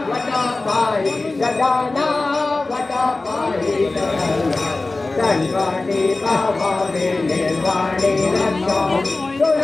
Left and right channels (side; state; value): right; quieter; 3.3 dB